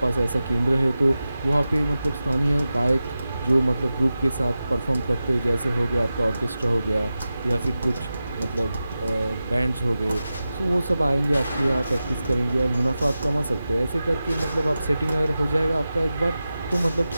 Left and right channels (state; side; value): inverted; both; correlation -0.93